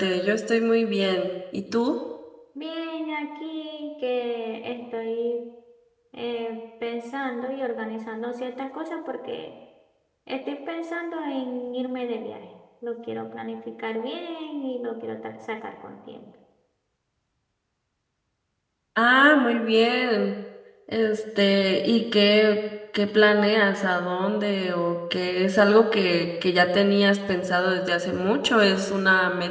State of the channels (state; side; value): identical; both; correlation 1.00